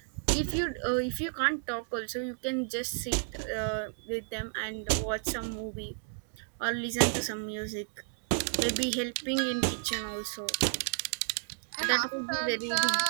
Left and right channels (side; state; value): left; silent; digital silence